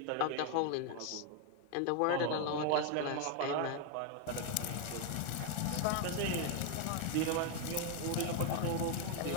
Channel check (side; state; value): both; different; correlation 0.01